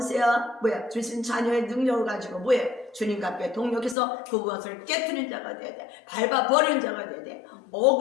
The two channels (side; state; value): right; drops out; at 4.0 s